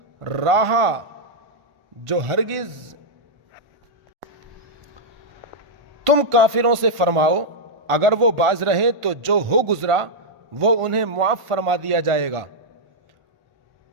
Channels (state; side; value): late; left; 1.5 ms